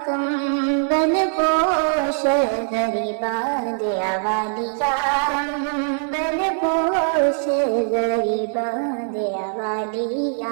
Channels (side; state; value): left; silent; digital silence